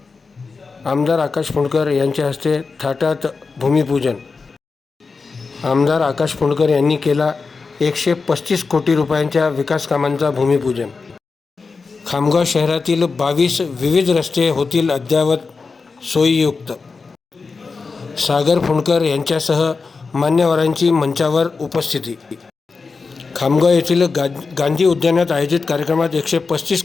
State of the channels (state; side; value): quieter; right; 4.5 dB